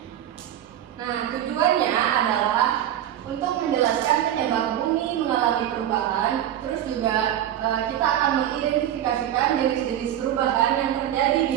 Nah, tujuannya adalah untuk menjelaskan penyebab bumi mengalami perubahan. Terus juga kita akan mengidentifikasikan jenis-jenis perubahan yang terjadi di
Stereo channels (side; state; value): left; quieter; 11.3 dB